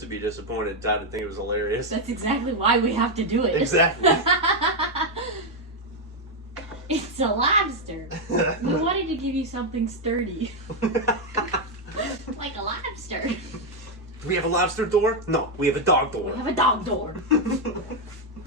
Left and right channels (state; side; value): normal; both; correlation 0.03